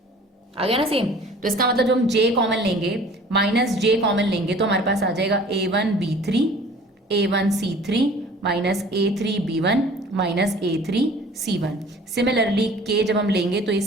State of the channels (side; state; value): both; normal; correlation 0.48